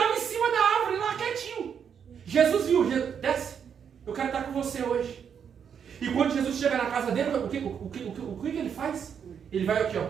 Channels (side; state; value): left; quieter; 7.6 dB